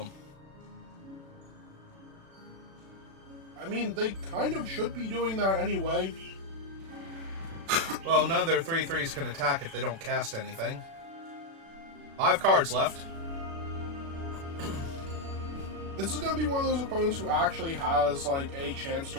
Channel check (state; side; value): late; left; 36 ms